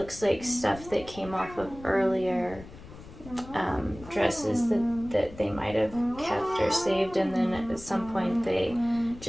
like stuff that came off of earlier dresses that they might have kept or saved, and then at some point they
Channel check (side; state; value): left; noise; rumble, 17 dB below the sound